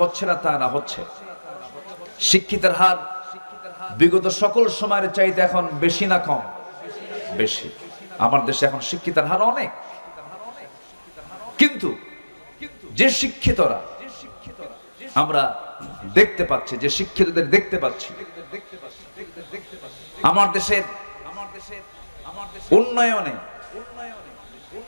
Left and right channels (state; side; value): inverted; both; correlation -1.00